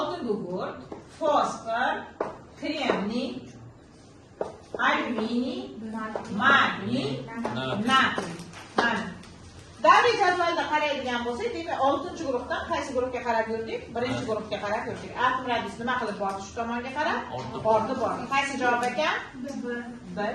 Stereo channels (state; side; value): identical; both; correlation 1.00